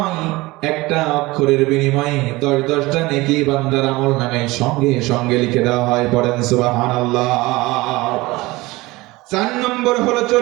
একটা অক্ষরের বিনিময়ে 10টা নেকি বান্দার আমলনামায় সঙ্গে সঙ্গে লিখে দেওয়া হয়। পড়েন সুবহানাল্লাহ। 4 নম্বর হলো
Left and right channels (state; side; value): quieter; left; 21.0 dB